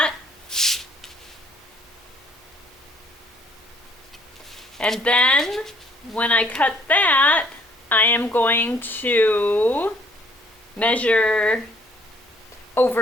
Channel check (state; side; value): normal; both; correlation 0.61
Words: and then when I cut that, I am going to measure